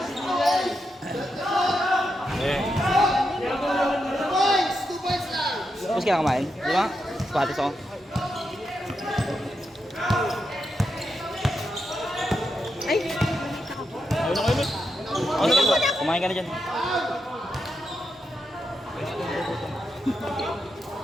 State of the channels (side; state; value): both; normal; correlation 0.85